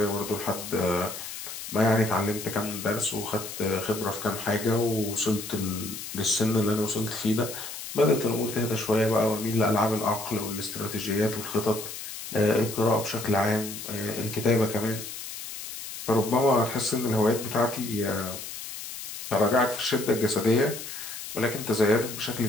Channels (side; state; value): left; noise; hiss, 9 dB below the sound